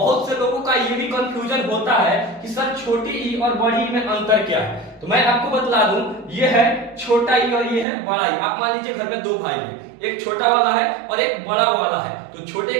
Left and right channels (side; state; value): left; drops out; at 7.9 s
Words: से लोगों का ये भी कंफ्यूजन होता है कि सर छोटी ई और बड़ी ई में अंतर क्या है। तो मैं आपको बतला दूं, ये है छोटा ई और ये है बड़ा ई। आप मान लीजिए घर में दो भाई हैं, एक छोटा वाला है और एक बड़ा वाला है, तो